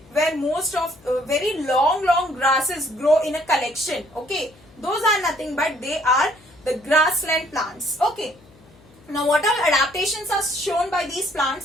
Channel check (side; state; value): left; noise; hum, 27 dB below the sound